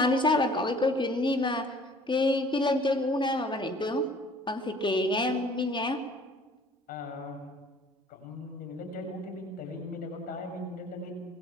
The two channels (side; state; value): both; normal; correlation 0.53